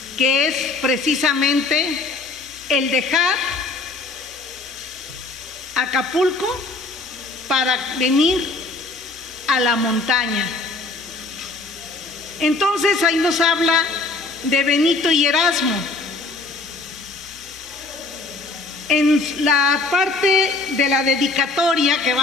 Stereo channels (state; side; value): quieter; right; 3.5 dB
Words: que es precisamente el dejar Acapulco para venir a la montaña. Entonces ahí nos habla de Benito y Erasmo. En la parte de la dedicatoria que